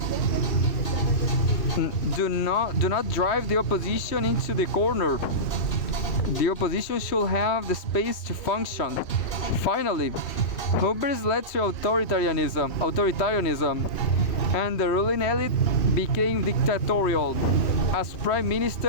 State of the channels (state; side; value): late; right; 3.2 ms